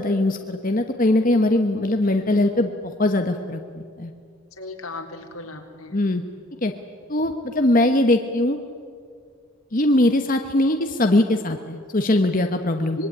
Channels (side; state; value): both; normal; correlation 0.61